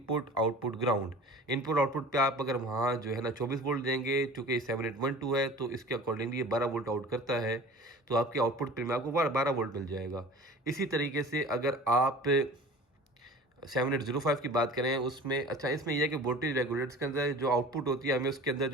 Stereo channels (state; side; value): normal; both; correlation 0.41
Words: output ground. Input output पे आप अगर वहाँ जो है ना 24 वोल्ट देंगे, चूँकि 7812 है तो इसके अकॉर्डिंगली ये 12 वोल्ट आउट करता है, तो आपके आउटपुट पिन में आपको 12 वोल्ट मिल जाएगा। इसी तरीके से अगर आप 7805 की बात करें उसमें, अच्छा इसमें यह है कि वोल्टेज रेगुलेटर्स के अंदर जो आउटपुट होती है हमें उसके अंदर